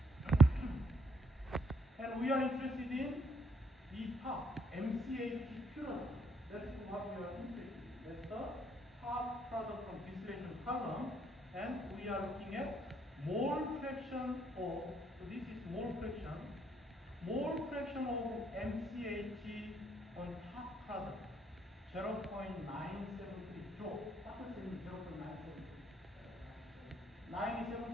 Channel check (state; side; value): normal; both; correlation 0.69